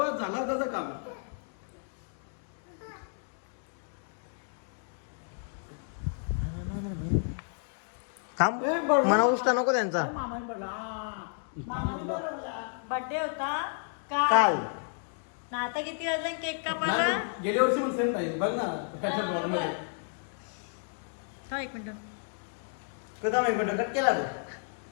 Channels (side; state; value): right; silent; 57 dB below the other